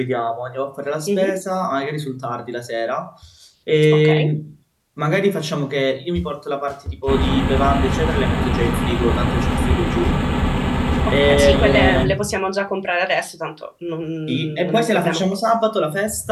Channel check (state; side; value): identical; both; correlation 1.00